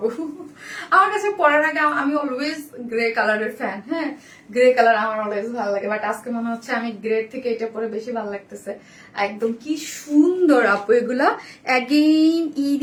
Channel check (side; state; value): both; identical; correlation 1.00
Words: আমার কাছে পরার আগে আমি অলওয়েজ গ্রে কালারের ফ্যান। হ্যাঁ গ্রে কালার আমার অলওয়েজ ভালো লাগে, বাট আজকে মনে হচ্ছে আমি গ্রে থেকে এটা পরে বেশি ভালো লাগতেছে। একদম কি সুন্দর আপু এগুলা। অ্যাগেইন ঈদ